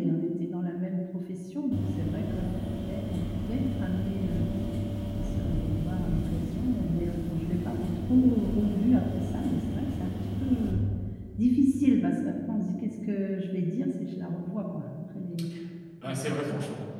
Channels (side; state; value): both; identical; correlation 1.00